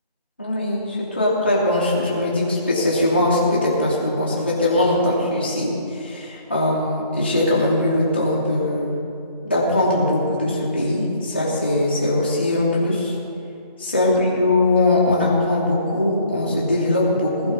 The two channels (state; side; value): inverted; both; correlation -0.57